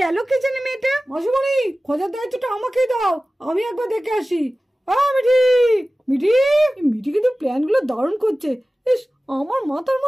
কে জানে মেয়েটা। মাসুমণি, খোঁজার দায়িত্বটা আমাকেই দাও, আমি একবার দেখে আসি। মিঠি মিঠি, মিঠি কিন্তু প্ল্যান গুলো দারুণ করছে। ইস, আমার মাথার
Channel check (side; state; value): both; normal; correlation 0.96